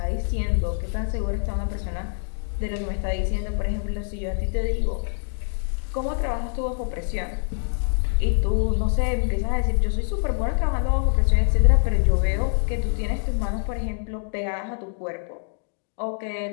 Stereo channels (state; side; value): silent; right; digital silence